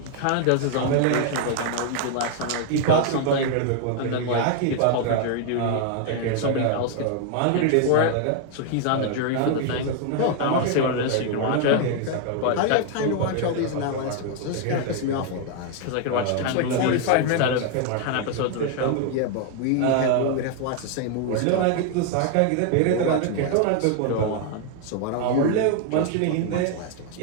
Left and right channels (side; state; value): both; different; correlation 0.00